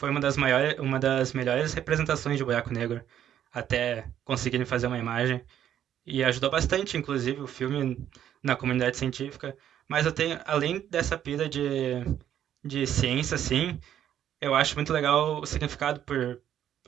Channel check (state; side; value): quieter; left; 10.5 dB